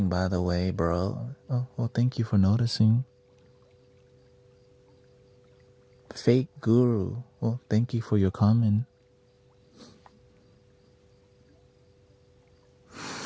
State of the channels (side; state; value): both; identical; correlation 1.00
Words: by the way, bro. Oh, well, thank you for noticing. Fake guru, well, thank you for your comment.